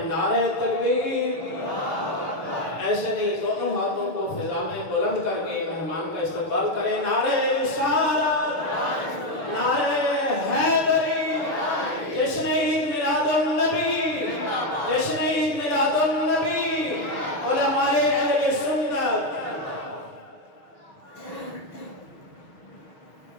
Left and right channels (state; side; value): late; right; 6.5 ms